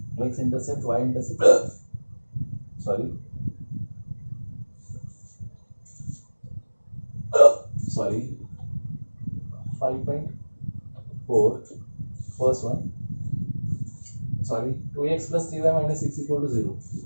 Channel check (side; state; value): both; inverted; correlation -1.00